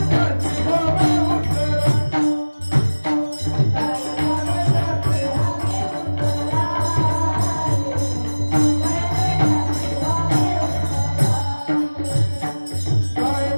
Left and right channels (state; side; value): inverted; both; correlation -1.00